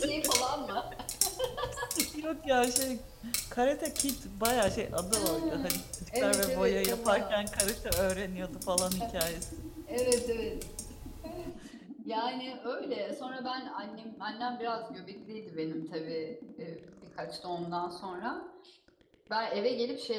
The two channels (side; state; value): both; identical; correlation 1.00